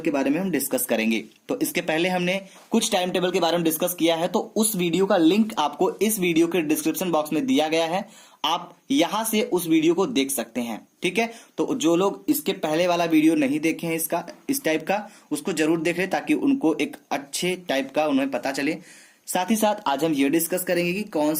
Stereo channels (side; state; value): both; identical; correlation 1.00